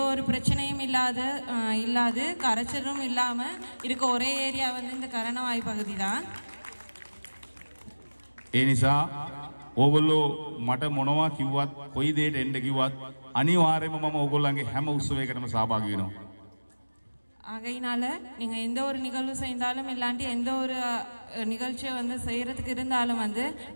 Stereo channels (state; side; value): inverted; both; correlation -1.00